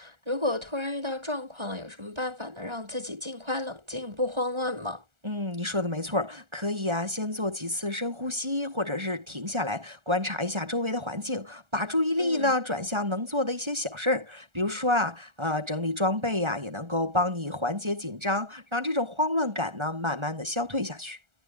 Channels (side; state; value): left; late; 1.4 ms